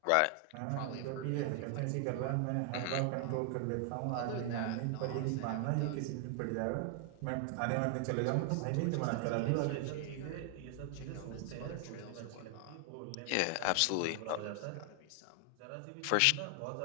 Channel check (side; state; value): both; different; correlation 0.00